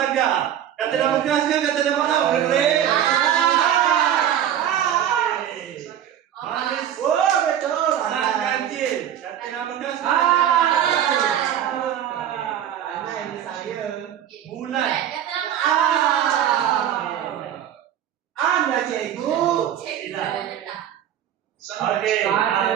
Kata nama keras ke kata nama awal? Boleh? Manis. Oh, betul. Sang ganjil. Kata nama keras ke? Anak ini saya. Bulan. Kata nama Ah. Anda cikgu. Cikgu dah letak. Okey.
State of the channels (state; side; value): quieter; left; 10.3 dB